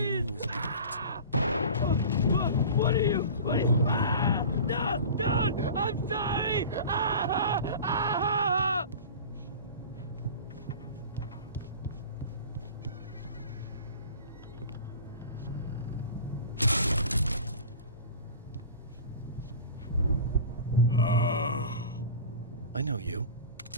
was locked. What are you? No! Don't! I'm sorry! I know you.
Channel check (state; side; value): inverted; both; correlation -0.36